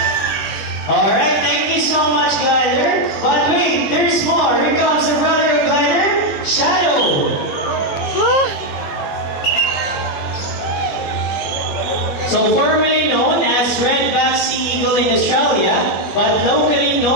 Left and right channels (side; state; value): right; late; 20 ms